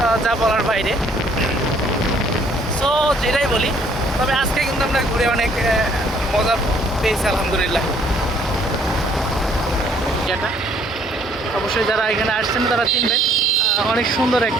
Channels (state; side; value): normal; both; correlation 0.63